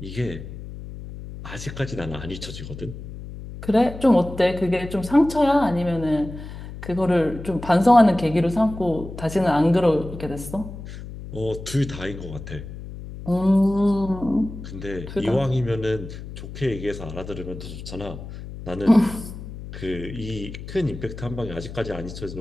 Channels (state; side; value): noise; left; hum, 11 dB below the sound